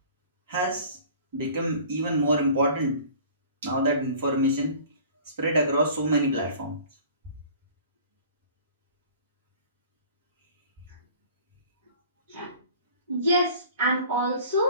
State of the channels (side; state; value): both; inverted; correlation -0.46